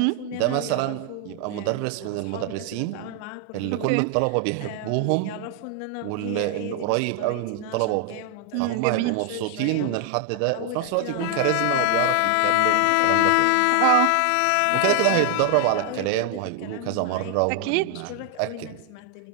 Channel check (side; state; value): both; different; correlation 0.00